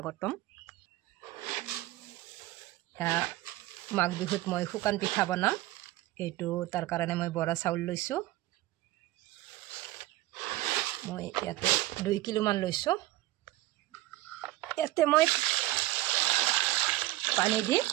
মাঘ বিহুত মই শুকান পিঠা বনাম। এইটো তাৰ কাৰণে মই বৰা চাউল লৈছোঁ। মই ইয়াতে 2 কিলো মান লৈছোঁ। ইয়াতে মই পানী দি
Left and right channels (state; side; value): quieter; left; 17.2 dB